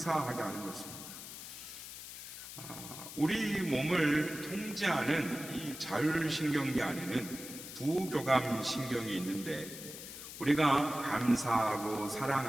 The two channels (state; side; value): noise; left; hiss, 11 dB below the sound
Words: 하는 것입니다. 우리 몸을 통제하는 이 자율신경계 안에는 부교감신경이 있는데 우리가 감사하고